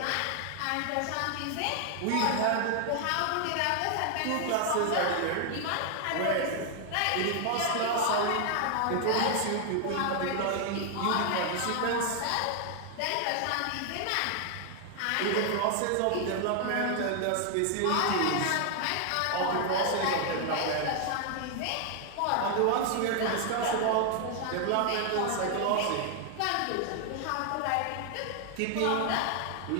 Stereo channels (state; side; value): different; both; correlation 0.00